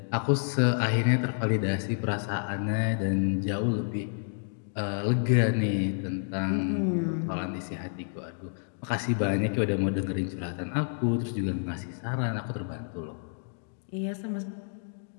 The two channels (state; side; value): silent; right; digital silence